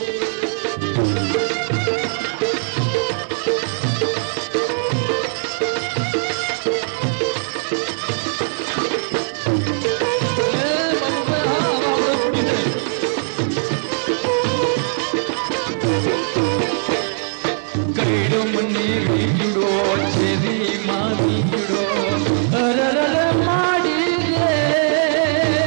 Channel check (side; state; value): left; silent; 66 dB below the other